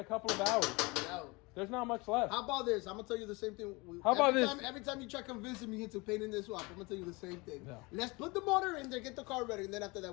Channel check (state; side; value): quieter; right; 25.7 dB